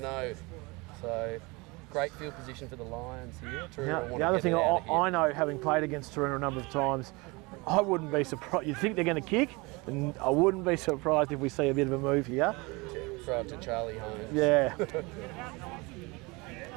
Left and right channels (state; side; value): quieter; left; 25.7 dB